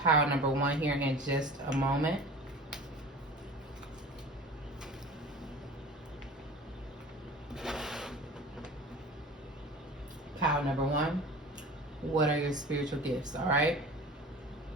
number 1 here in just a moment. Pile number 1. What are your spiritual gifts? All right.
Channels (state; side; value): normal; both; correlation 0.39